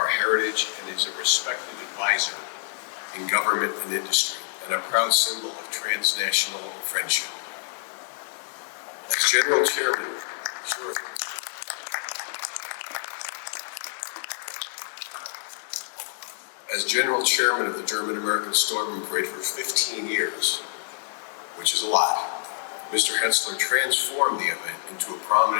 heritage, and is a respected advisor in government and industry, and a proud symbol of transnational friendship. As General Chairman, As General Chairman of the German-American Stoyman Parade for 15 years, which is a lot, Mr. Hetzler transformed the event into a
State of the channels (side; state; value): right; silent; digital silence